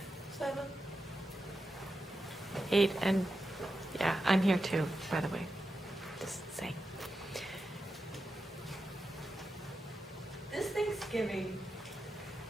7. 8, and yeah, I'm here too, by the way. Just saying. This Thanksgiving,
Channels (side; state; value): both; normal; correlation 0.89